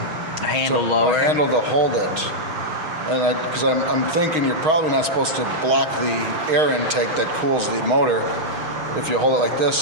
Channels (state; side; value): late; left; 6.4 ms